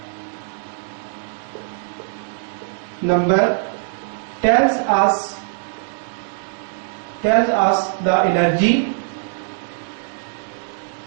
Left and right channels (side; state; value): left; silent; digital silence